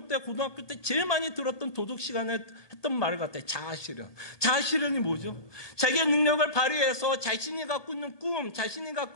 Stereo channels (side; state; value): right; late; 1.2 ms